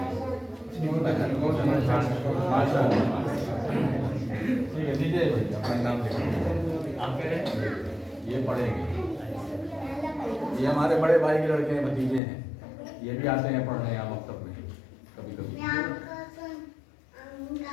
ठीक है, दीजिए भाई अपना नाम लिखो। आप कह रहे हैं ये पढ़ेंगे, ये हमारे बड़े भाई के लड़के हैं, भतीजे हैं, ये भी आते हैं पढ़ने यहाँ मकतब में कभी कभी।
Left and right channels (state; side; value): drops out; right; at 12.2 s